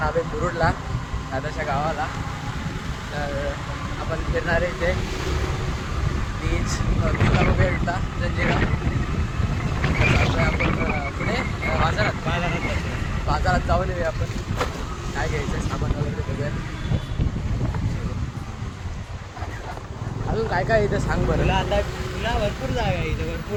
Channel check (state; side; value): identical; both; correlation 1.00